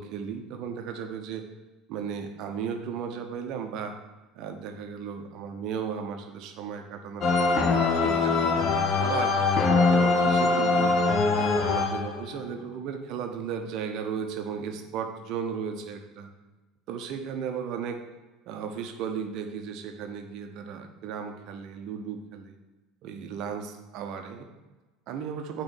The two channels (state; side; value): normal; both; correlation 0.52